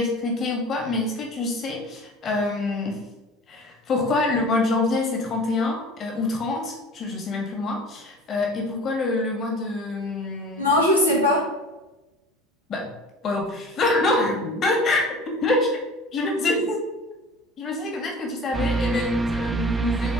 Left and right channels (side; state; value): both; normal; correlation 0.39